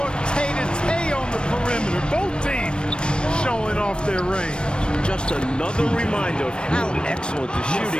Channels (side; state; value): right; late; 0.054 ms